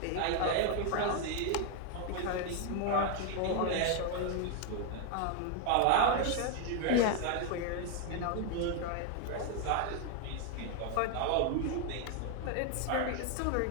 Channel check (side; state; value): both; different; correlation 0.00